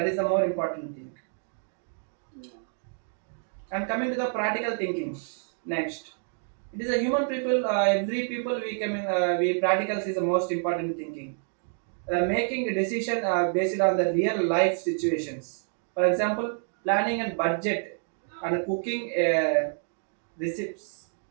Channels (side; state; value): left; silent; 59 dB below the other